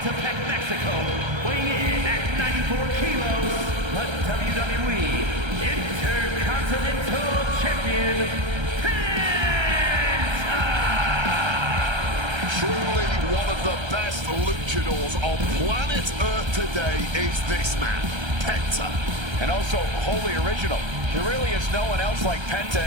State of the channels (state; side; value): late; left; 1.3 ms